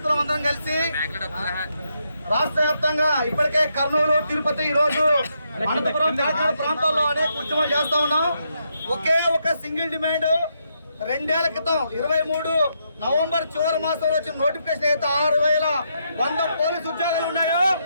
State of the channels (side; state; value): both; inverted; correlation -0.79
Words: కలిసి రాష్ట్ర వ్యాప్తంగా ఇప్పటికే కర్నూలు, తిరుపతి, ఈరోజు అనంతపురం, తెలంగాణ ప్రాంతాల్లో అనేక ఉద్యమాలు చేస్తా ఉన్నాం. ఒకే ఒక సింగిల్ డిమాండ్, 2 ఏళ్ల క్రితం 23 నవంబర్ చివరి మాసంలో వచ్చిన నోటిఫికేషన్ అయితే 6,100 పోలీసు ఉద్యోగాలు ఉన్నాయో